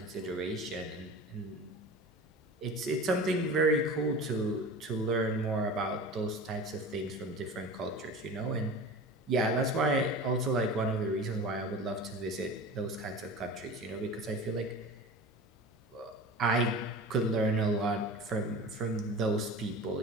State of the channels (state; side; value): normal; both; correlation 0.34